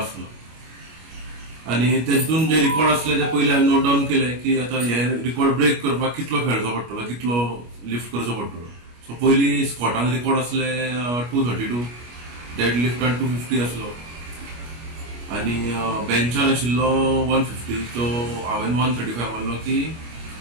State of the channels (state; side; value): late; left; 25 ms